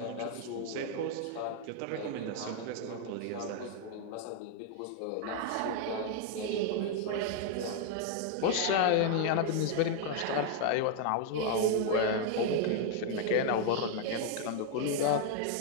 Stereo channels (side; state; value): both; different; correlation 0.00